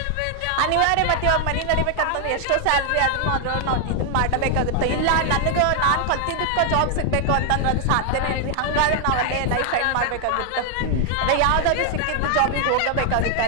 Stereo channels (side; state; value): both; different; correlation 0.00